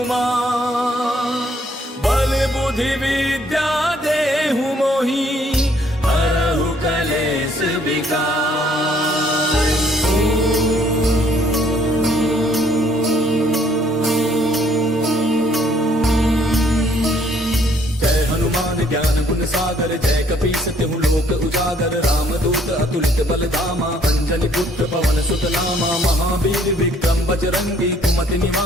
बल बुद्धि विद्या देहु मोहि हरहु कलेश विकार। जय हनुमान ज्ञान गुण सागर जय कपीस तिहु लोक उजागर। राम दूत अतुलित बल धामा अंजनी पुत्र पवन सुत नामा। महावीर विक्रम बजरंगी कुमति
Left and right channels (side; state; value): both; normal; correlation 0.64